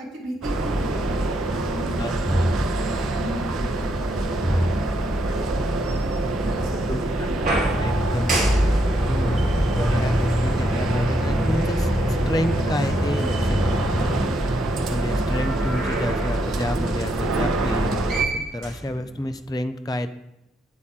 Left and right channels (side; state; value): both; normal; correlation 0.77